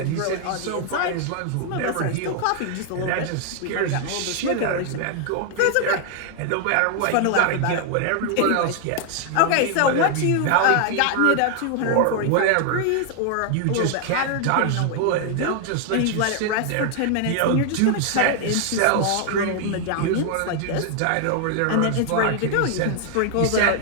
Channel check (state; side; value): different; both; correlation 0.00